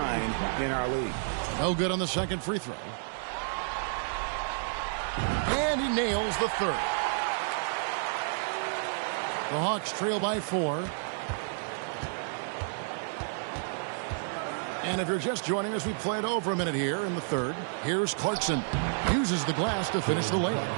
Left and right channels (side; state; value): left; silent; digital silence